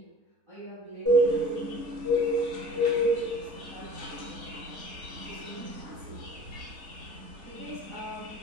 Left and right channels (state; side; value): late; left; 4.0 ms